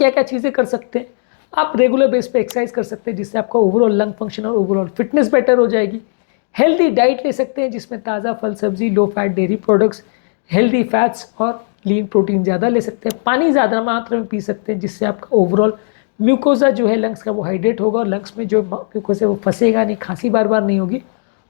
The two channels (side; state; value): right; silent; digital silence